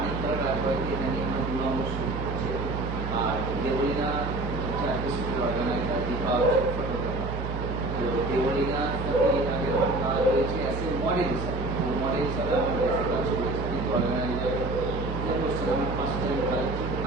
রাজবাড়িতে এখানে আমার 2 নম্বর শুট করছি, আর দেবলীনা হচ্ছে একটা শুটের অর্গানাইজার, দীপা হচ্ছে ফটোগ্রাফার। তো দেবলীনার সাথে আগে কথা রয়েছে অ্যাজ এ মডেল হিসাবে, মডেল হিসাবে আমার বেশি কাজ করেছি, কিন্তু অর্গানাইজার যে করছে আমি ফার্স্ট টাইম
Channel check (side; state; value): right; noise; hum, 5 dB below the sound